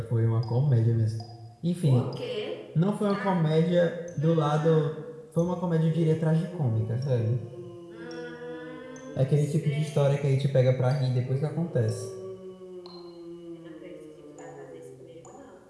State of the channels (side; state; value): both; identical; correlation 1.00